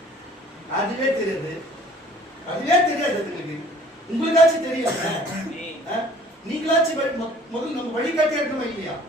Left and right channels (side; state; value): both; normal; correlation 0.53